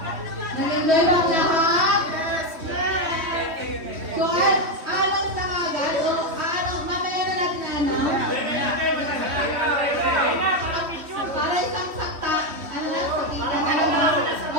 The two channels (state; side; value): late; left; 3.1 ms